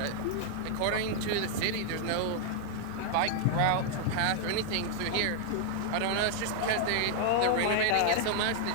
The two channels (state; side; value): different; both; correlation 0.00